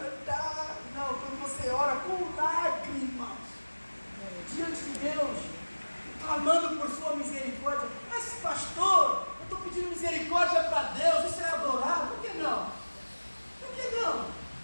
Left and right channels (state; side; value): inverted; both; correlation -1.00